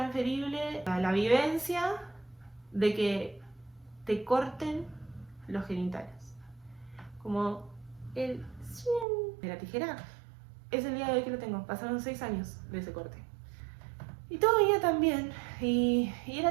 la vivencia de que te corten los genitales. Como el de la tijera. Es el día de hoy que lo tengo. Pasaron 6 años de ese corte. Y todo venía tan bien. Y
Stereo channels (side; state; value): left; drops out; at 9.1 s